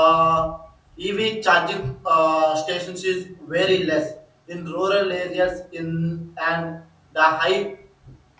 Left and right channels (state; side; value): identical; both; correlation 1.00